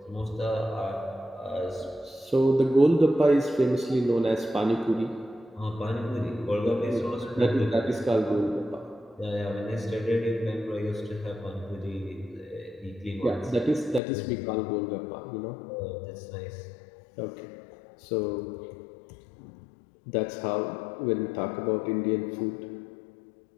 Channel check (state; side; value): drops out; right; at 14.0 s